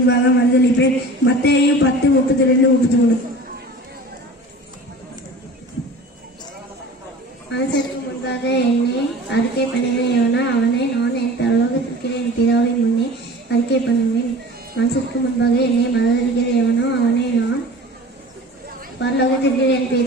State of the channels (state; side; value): normal; both; correlation 0.40